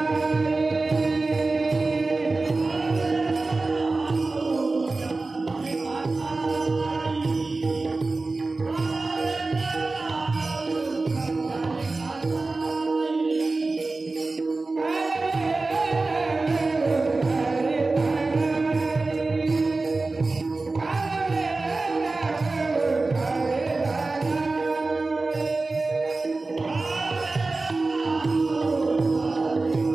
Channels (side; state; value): left; quieter; 3.5 dB